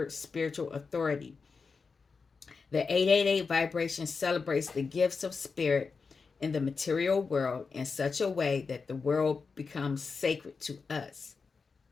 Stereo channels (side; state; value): right; quieter; 4.9 dB